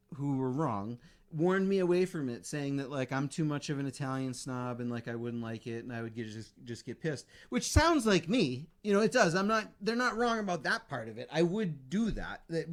who were wrong warned me away from it, saying that like I'm too much of an Italian snob and like I wouldn't like it and I would just get pissed, which sounds like me. It does. They're not wrong about that part of it. I would do that.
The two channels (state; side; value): identical; both; correlation 1.00